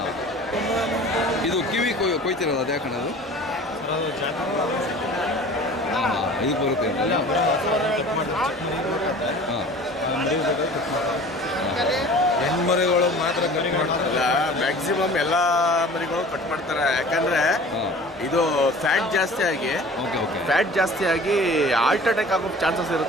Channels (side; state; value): both; normal; correlation 0.43